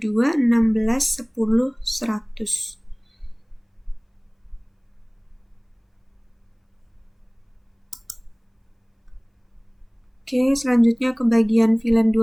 Oke, selanjutnya ke bagian VLAN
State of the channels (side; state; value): both; identical; correlation 1.00